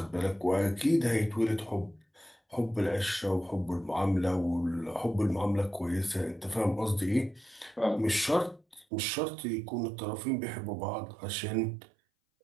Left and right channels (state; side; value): drops out; left; at 8.8 s